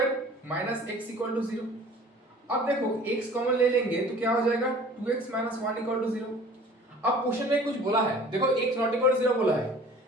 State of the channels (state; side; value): normal; both; correlation 0.47